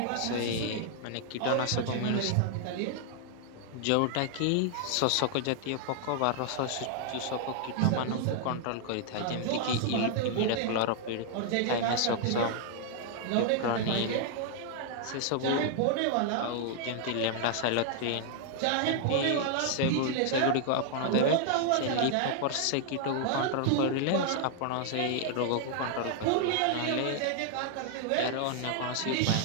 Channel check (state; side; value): different; both; correlation 0.00